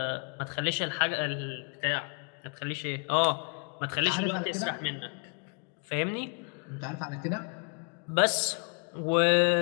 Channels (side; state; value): right; quieter; 39.1 dB